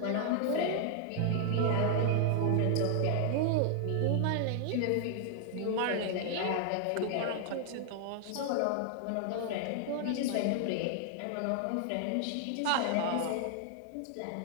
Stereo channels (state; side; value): different; both; correlation 0.00